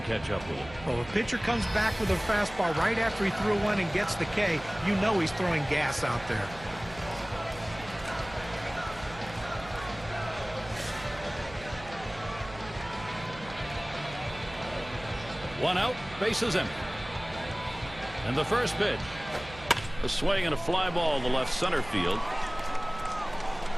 catch up with it. Well, if a pitcher comes back with a fastball right after he threw one and gets the K, you know he's throwing gas out there. One out, bases empty. And the first pitch. A swing and a fly ball to left center field.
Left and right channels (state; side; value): noise; right; hum, 16 dB below the sound